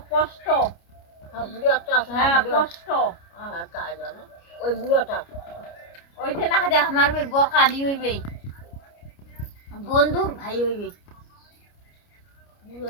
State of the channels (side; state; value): right; late; 29 ms